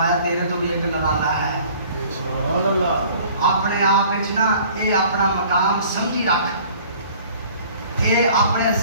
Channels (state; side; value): inverted; both; correlation -0.51